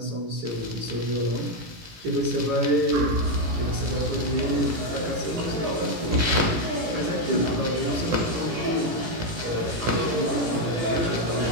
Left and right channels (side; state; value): left; late; 18 ms